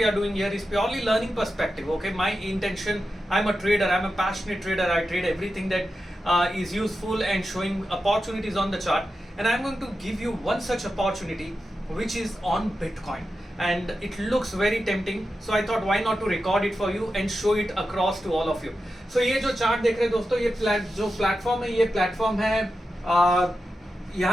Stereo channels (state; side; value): normal; both; correlation 0.90